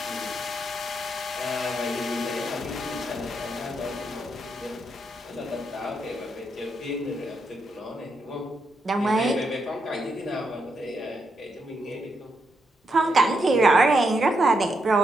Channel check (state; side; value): normal; both; correlation 0.81